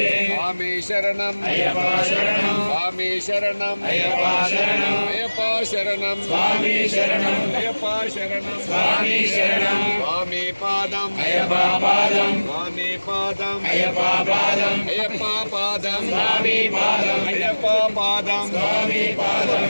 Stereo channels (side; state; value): both; inverted; correlation -1.00